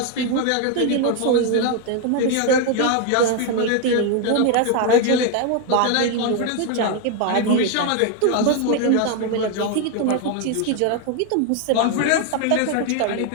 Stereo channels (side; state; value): both; different; correlation 0.01